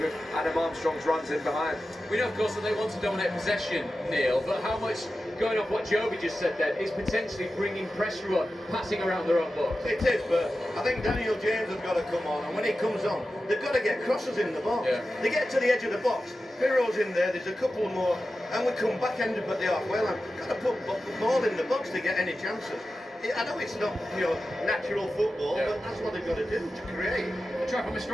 Adam Armstrong's runs in behind. We know, of course, that they want to dominate possession, Neil, but how much, going off what Joby just said then, is potentially bringing pressure on, passing around their own box? It is, but I think Daniel James has got to come on, and when he comes on, they've got to get crosses in the box. Yeah. They get to the edge of the box, Piro's in there's a couple more, and we come back-ended at the halfway line. Got to put the ball in the box to get any chances. I know it's not, natural football, but that's what they've got to do, to create. Try from a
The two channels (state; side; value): normal; both; correlation 0.93